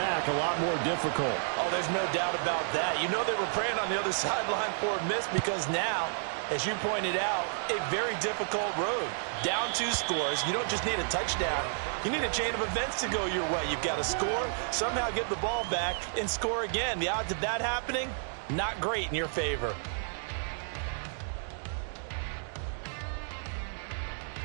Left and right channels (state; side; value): silent; left; digital silence